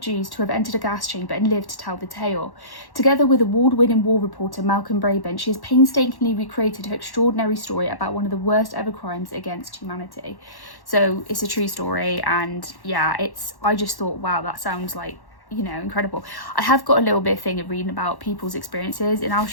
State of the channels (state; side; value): late; right; 1.1 ms